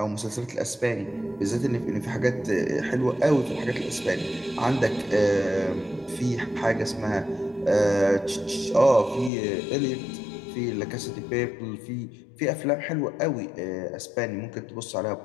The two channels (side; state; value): right; drops out; at 9.3 s